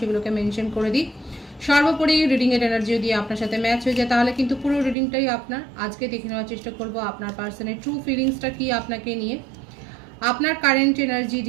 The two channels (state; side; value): drops out; left; at 5.0 s